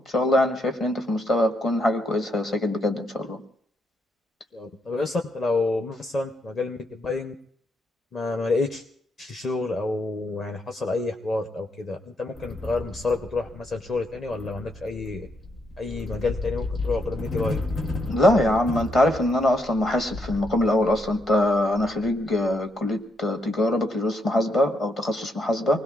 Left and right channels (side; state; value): both; normal; correlation 0.77